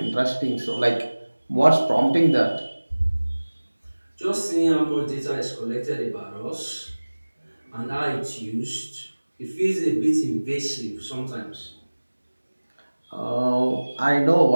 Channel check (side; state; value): both; inverted; correlation -1.00